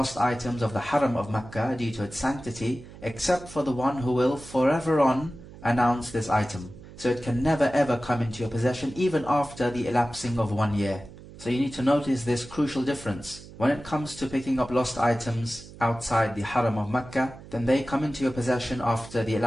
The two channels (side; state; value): right; noise; hum, 17 dB below the sound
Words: items of the Haram of Mecca due to its sanctity, except for the one who will forever on announce this item. So it can never ever come into your possession even after the elapsing of 1 year. So you need to notice this crucial difference. When it comes to picking up lost items outside the Haram of Mecca, then they come into your possession after the